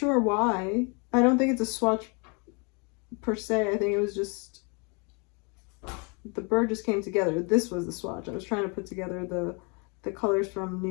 why. I don't think it's a swatch per se. I think it was just, the bird just came together. This was the swatch. I was trying to put together the colors from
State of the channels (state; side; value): quieter; right; 33.0 dB